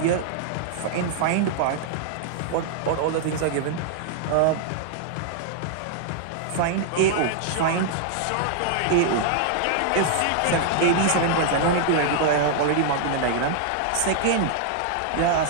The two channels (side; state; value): both; different; correlation -0.01